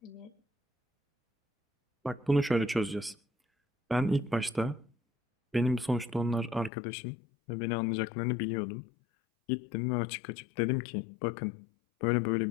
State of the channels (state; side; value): drops out; right; at 6.7 s